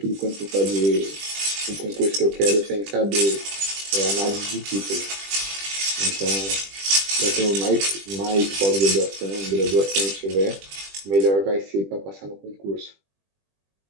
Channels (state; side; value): late; left; 20 ms